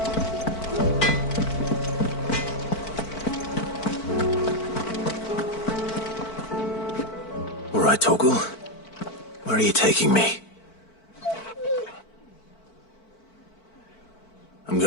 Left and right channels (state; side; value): late; right; 4.5 ms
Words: All right, Torgal. Where are you taking me? I'm